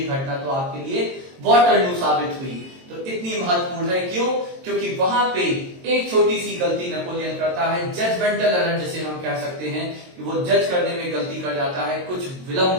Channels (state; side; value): late; left; 22 ms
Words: घटना तो आपके लिए वाटरलू साबित हुई। तो इतनी महत्वपूर्ण है, क्यों? क्योंकि वहां पे एक छोटी सी गलती नेपोलियन करता है, जजमेंटल एरर जिसे हम कह सकते हैं, कि वो जज करने में गलती कर जाता है, कुछ